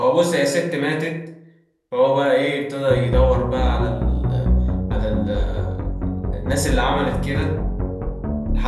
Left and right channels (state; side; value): identical; both; correlation 1.00